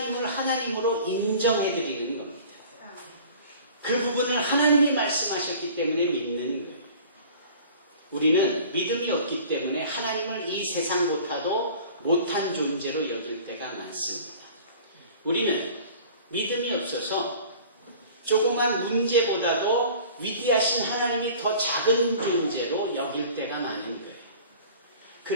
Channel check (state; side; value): inverted; both; correlation -0.45